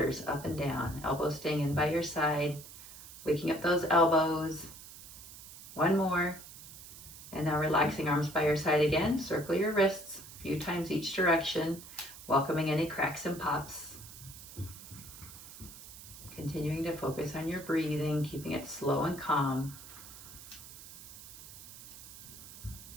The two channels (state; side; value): noise; right; hiss, 15 dB below the sound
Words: up and down. Elbows staying in by your side, waking up those elbows. One more. And now relaxing arms by your side again. Circle your wrists a few times each direction, welcoming any cracks and pops. Continuing to focus on your breathing, keeping it slow and calm.